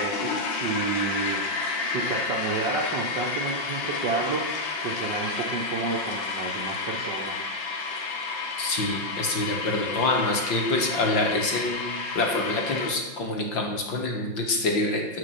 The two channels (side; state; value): right; late; 5.8 ms